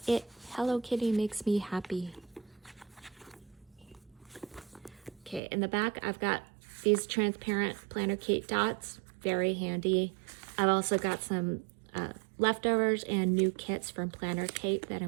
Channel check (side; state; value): left; drops out; at 5.4 s